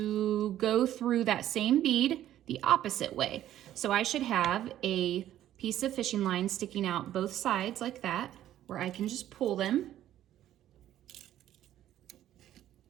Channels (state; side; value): quieter; left; 12.3 dB